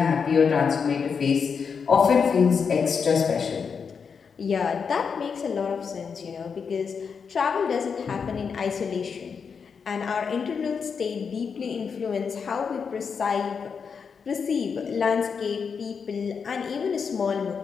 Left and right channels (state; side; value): quieter; right; 6.1 dB